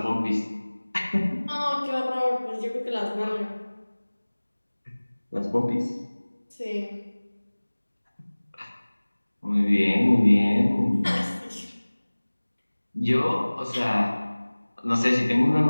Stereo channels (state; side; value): inverted; both; correlation -1.00